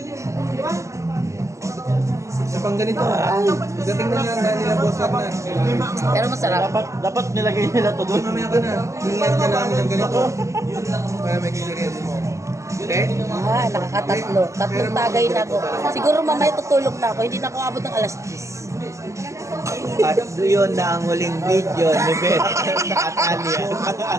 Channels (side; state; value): left; late; 0.15 ms